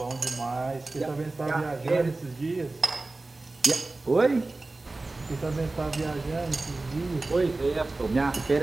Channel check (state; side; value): quieter; left; 3.2 dB